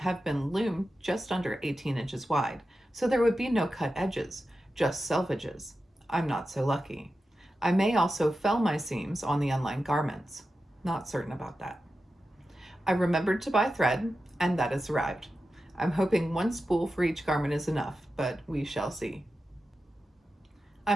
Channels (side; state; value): both; normal; correlation 0.92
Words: been loomed just under 18 inches wide, so there would be no cut edges, just selvages. I'm not so lucky. I may also fell my seams on the unlined garments. Not certain about that. I remembered to buy thread, and that has arrived. I'm hoping one spool for each garment is enough, but we shall see.